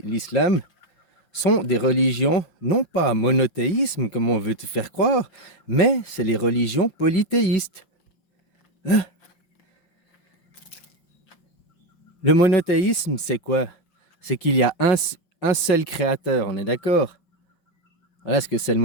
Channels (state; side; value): late; right; 5.8 ms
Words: sont des religions non pas monothéismes comme on veut te faire croire, mais c'est les religions polythéistes. Le monothéisme, c'est quoi? C'est qu'il y a un seul créateur, on est d'accord? Voilà ce que c'est le